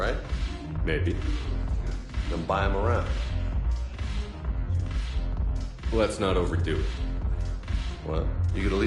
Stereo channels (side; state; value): both; identical; correlation 1.00